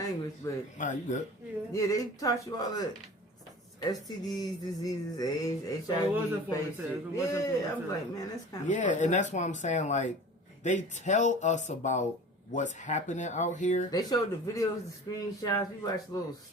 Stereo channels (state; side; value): normal; both; correlation 0.40